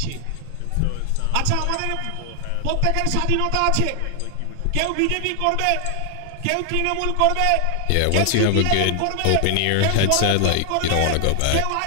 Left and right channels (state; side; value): different; both; correlation 0.00